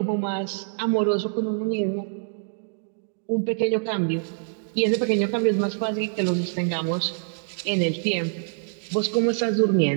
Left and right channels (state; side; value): silent; left; digital silence